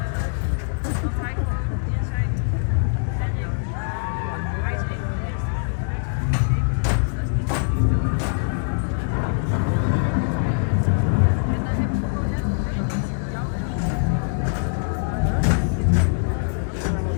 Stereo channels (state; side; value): silent; right; digital silence